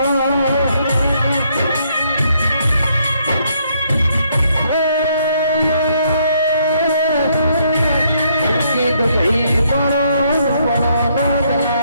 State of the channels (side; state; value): both; inverted; correlation -0.71